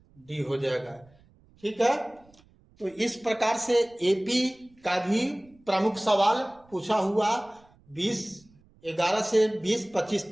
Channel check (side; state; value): right; noise; rumble, 30 dB below the sound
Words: डी हो जाएगा। ठीक है, तो इस प्रकार से एपी का भी प्रमुख सवाल पूछा हुआ 11 से 25